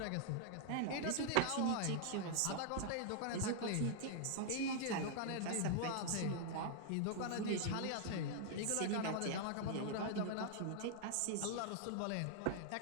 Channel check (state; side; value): different; both; correlation -0.01